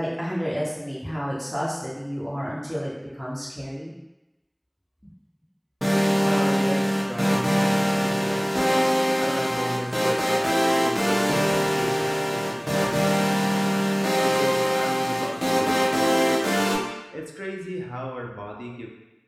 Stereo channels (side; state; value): both; identical; correlation 1.00